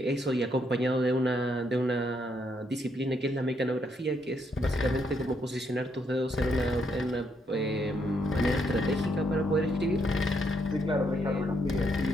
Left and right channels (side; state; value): both; normal; correlation 0.75